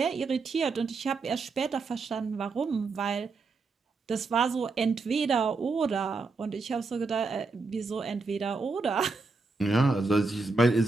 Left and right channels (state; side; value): quieter; left; 4.0 dB